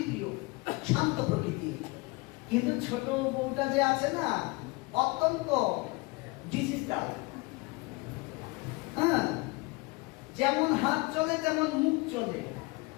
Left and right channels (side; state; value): right; quieter; 25.2 dB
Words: শান্ত প্রকৃতির। কিন্তু ছোট বউটা যে আছে না, অত্যন্ত ডিজিটাল। হ্যাঁ, যেমন হাত চলে তেমন মুখ চলে।